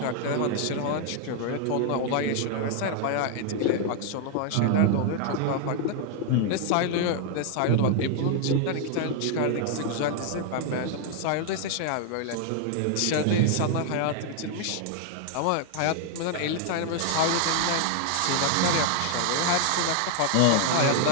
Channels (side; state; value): both; different; correlation 0.00